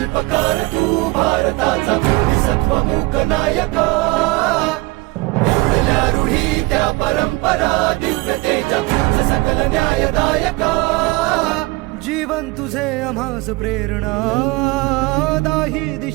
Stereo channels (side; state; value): left; quieter; 23.2 dB